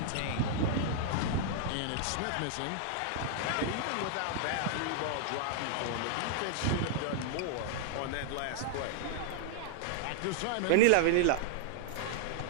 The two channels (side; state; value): both; different; correlation 0.00